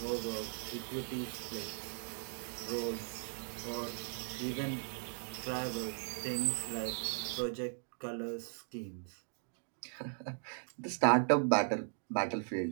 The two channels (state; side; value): silent; left; digital silence